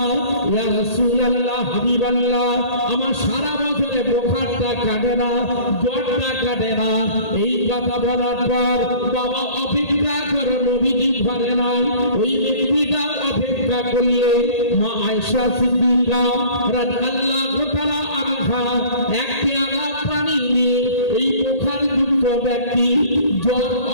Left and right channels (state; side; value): late; right; 1.8 ms